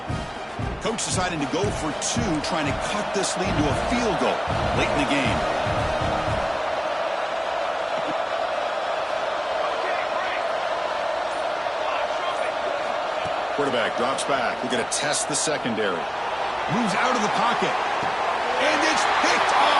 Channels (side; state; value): both; identical; correlation 1.00